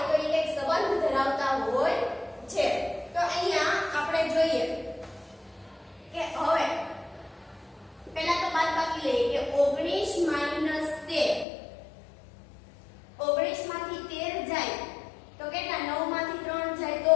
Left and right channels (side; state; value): right; drops out; at 11.5 s